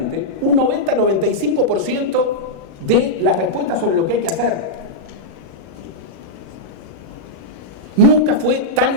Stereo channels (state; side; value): late; left; 36 ms